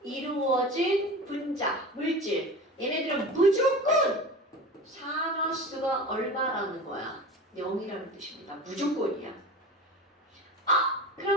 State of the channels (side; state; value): both; normal; correlation 0.32